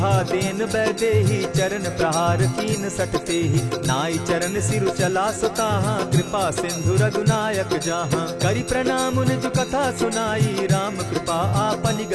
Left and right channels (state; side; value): identical; both; correlation 1.00